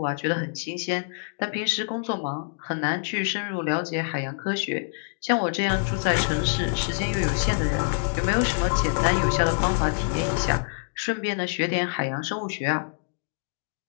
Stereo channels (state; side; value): silent; right; digital silence